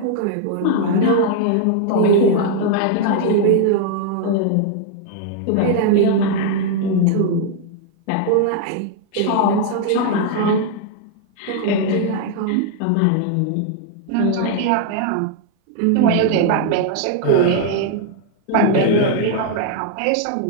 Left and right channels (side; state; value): both; different; correlation 0.00